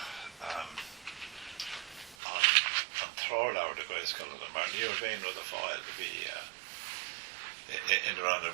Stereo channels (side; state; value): left; drops out; at 2.1 s